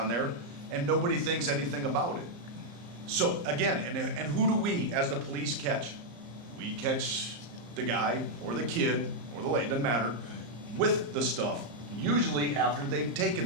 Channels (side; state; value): left; late; 34 ms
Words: there, and nobody thinks anything about it. So again, and who do we as the police catch? We catch the guy or the kid or the lady, doesn't matter, with the stuff, usually after they've